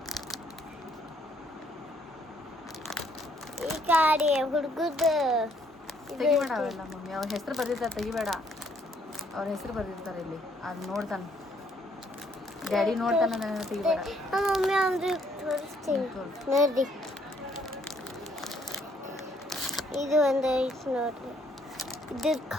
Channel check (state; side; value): normal; both; correlation 0.67